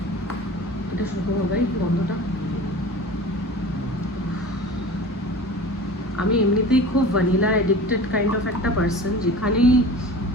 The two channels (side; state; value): both; normal; correlation 0.38